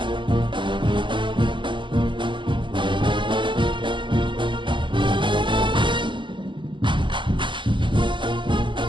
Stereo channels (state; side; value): late; left; 0.23 ms